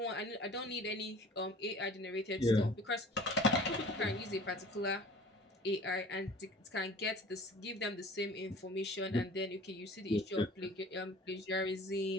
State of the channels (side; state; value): both; normal; correlation 0.45